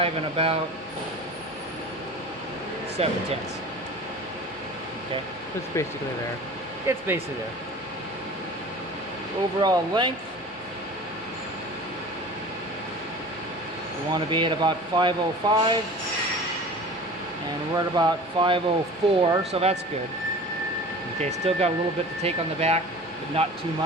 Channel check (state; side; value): normal; both; correlation 0.39